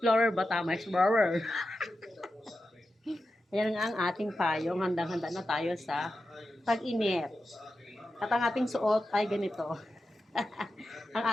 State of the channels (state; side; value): normal; both; correlation 0.91